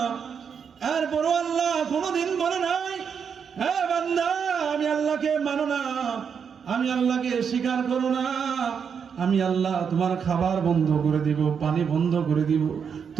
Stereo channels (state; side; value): quieter; left; 6.8 dB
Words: এরপরও আল্লাহ কোনোদিন বলে নাই, হ্যাঁ বান্দা আমি আল্লাহকে মানো না, আমি আল্লাহকে স্বীকার করো না, আমি আল্লাহ তোমার খাবার বন্ধ করে দিব, পানি বন্ধ করে দিব,